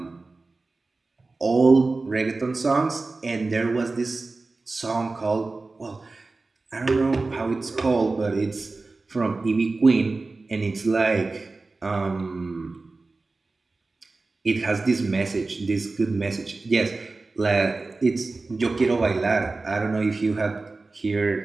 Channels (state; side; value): quieter; left; 3.6 dB